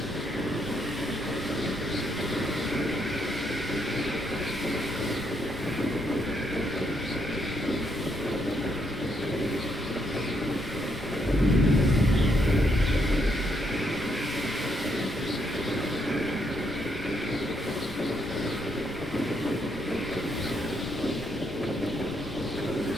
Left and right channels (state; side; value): normal; both; correlation 0.76